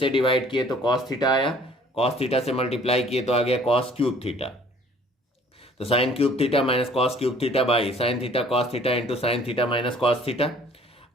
डिवाइड किए तो कॉस थीटा आया, कॉस थीटा से मल्टीप्लाई किए तो आ गया कॉस क्यूब थीटा. तो sine cube theta minus cos cube theta by sine theta cos theta into sine theta minus cos theta.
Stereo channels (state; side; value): normal; both; correlation 0.55